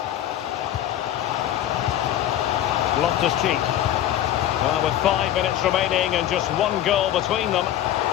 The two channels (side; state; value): right; quieter; 12.1 dB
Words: Loftus-Cheek. Well, with 5 minutes remaining and just one goal between them,